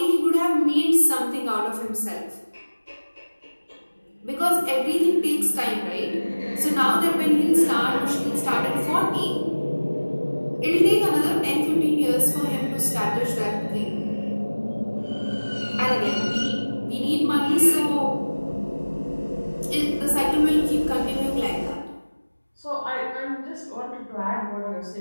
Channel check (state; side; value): inverted; both; correlation -1.00